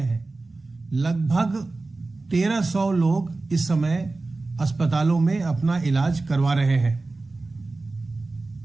है। लगभग 1,300 लोग इस समय अस्पतालों में अपना इलाज करवा रहे हैं।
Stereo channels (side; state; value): left; quieter; 3.4 dB